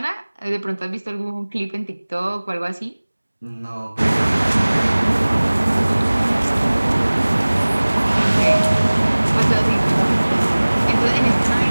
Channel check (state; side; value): inverted; both; correlation -1.00